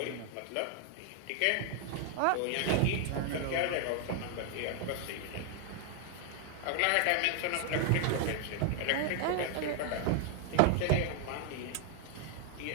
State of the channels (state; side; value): different; both; correlation 0.00